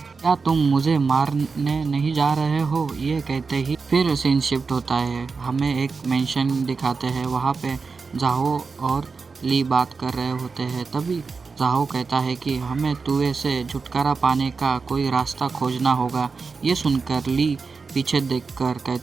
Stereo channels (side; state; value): left; quieter; 4.7 dB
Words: क्या तुम मुझे मारने नहीं जा रहे हो? ये कहते ही फिर सीन शिफ्ट होता है। हमें एक मेंशन दिखाते हैं, वहाँ पे जाहो और ली बात कर रहे होते हैं। तभी जाहो कहता है कि हमें तुए से छुटकारा पाने का कोई रास्ता खोजना होगा। ये सुनकर ली पीछे देखकर